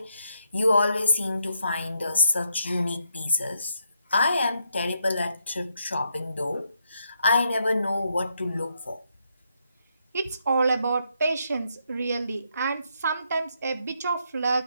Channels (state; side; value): inverted; both; correlation -0.78